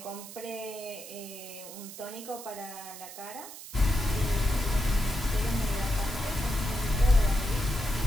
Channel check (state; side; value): noise; right; hiss, 13 dB below the sound